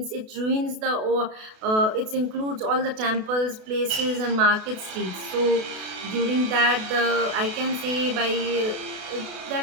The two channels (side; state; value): left; late; 32 ms